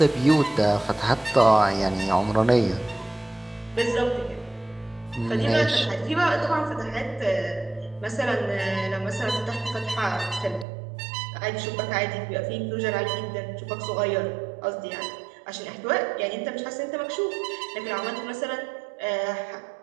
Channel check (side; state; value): left; drops out; at 10.7 s